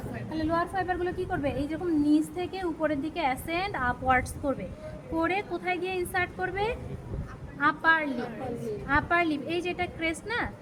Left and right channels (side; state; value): both; identical; correlation 1.00